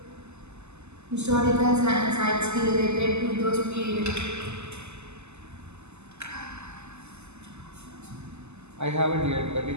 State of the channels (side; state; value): left; late; 0.81 ms